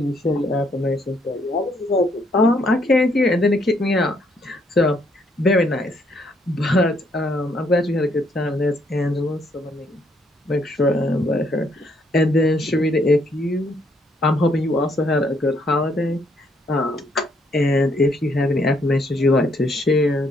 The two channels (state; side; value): normal; both; correlation 0.70